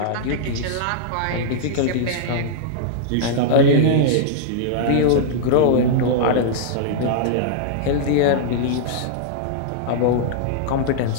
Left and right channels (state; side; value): different; both; correlation -0.01